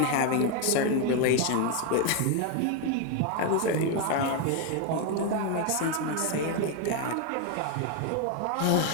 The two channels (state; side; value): different; both; correlation 0.01